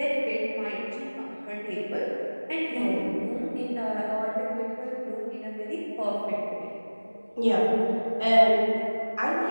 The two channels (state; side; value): inverted; both; correlation -1.00